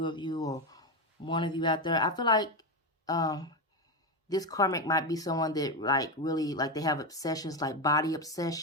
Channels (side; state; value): both; normal; correlation 0.12